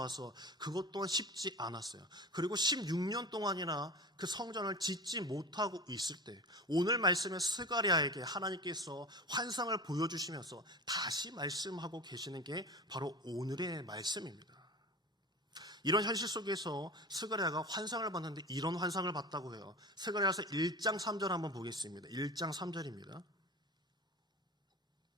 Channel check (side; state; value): both; normal; correlation 0.32